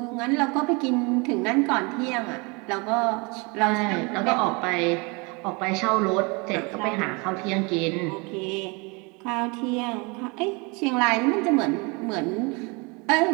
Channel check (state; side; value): quieter; left; 29.2 dB